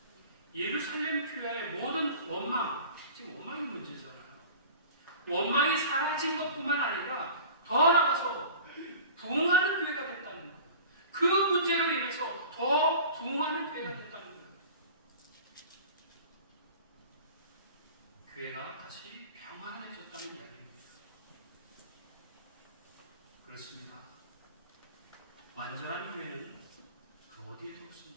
예루살렘 교회의 모든 원망, 지금 원망이 문제잖아요. 원망이 사라진 것뿐만 아니라 더 나아가서 부흥하는 교회가 됐다는 거예요. 그 문제로 인해서 더 부흥하는 교회가 됐다는 거예요. 교회가 다시 평안해졌다는 이야기입니다. 그렇습니다. 완전한 교회는 그 어디에도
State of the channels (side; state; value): both; inverted; correlation -0.40